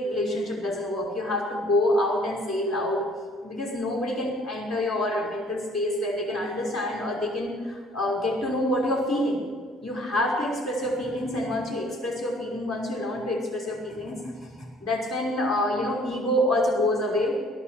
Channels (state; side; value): normal; both; correlation 0.57